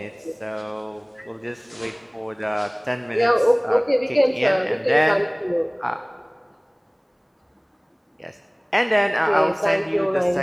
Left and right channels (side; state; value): both; identical; correlation 1.00